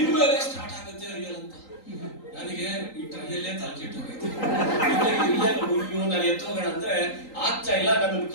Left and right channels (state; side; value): late; right; 3.8 ms